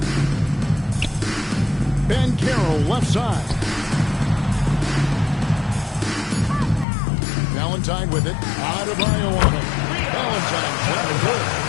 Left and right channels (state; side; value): drops out; right; at 6.9 s